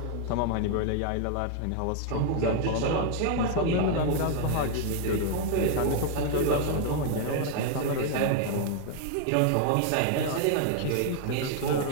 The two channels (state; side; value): different; both; correlation 0.00